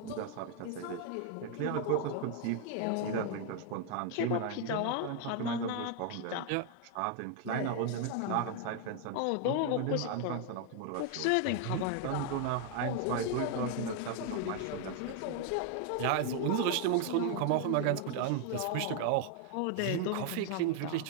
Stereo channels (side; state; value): both; different; correlation 0.00